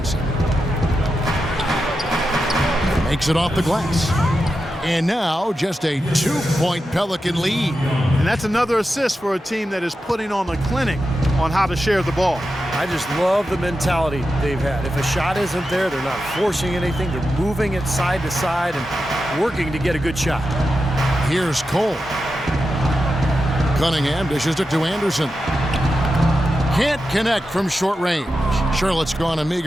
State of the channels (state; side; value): normal; both; correlation 0.89